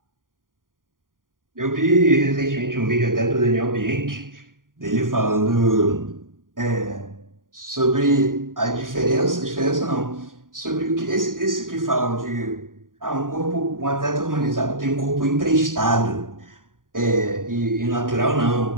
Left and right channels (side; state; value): left; late; 0.90 ms